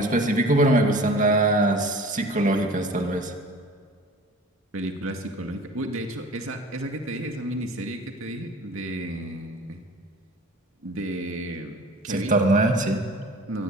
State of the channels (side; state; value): both; normal; correlation 0.43